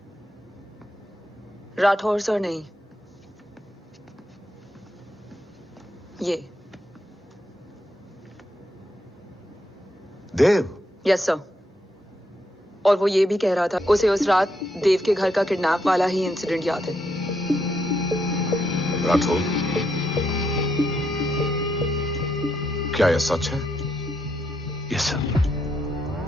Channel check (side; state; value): both; normal; correlation 0.79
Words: राठौर सर नहीं, ये देव। Yes sir. और वो ये भी कह रहा था उसे उस रात देव के घर का किडनैप वाला ही इंसिडेंट याद है। राठौर, क्या यह सच है? Yes sir.